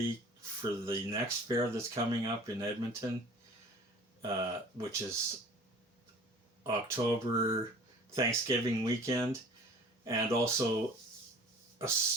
for the next fair that's coming up in Edmonton, which is October Thanksgiving weekend, and also a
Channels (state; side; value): normal; both; correlation 0.46